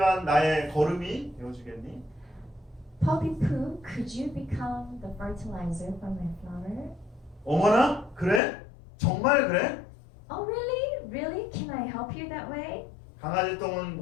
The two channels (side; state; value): right; drops out; at 8.4 s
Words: 나의 거름이 되어주겠니? Poppy poo, could you become the fertilizer for my flower? 어머나? 그래? 정말 그래? Oh, really? Really? Can I help you that way? 강아지